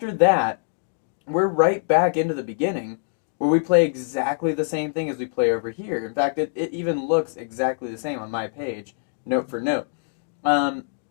that, we're right back into the beginning, where we play exactly the same thing as we play over here. In fact, it even looks exactly the same on my page, note for note. And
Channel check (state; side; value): silent; right; digital silence